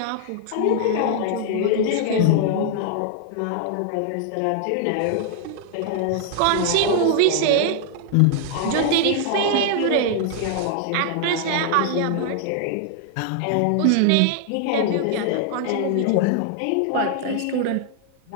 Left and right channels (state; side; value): different; both; correlation 0.00